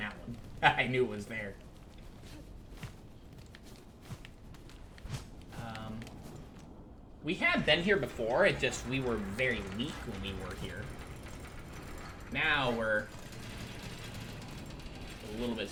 one. I knew it was there. We had been here before, it just, we were very weak when we were here. Now we're a little bit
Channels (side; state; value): both; identical; correlation 1.00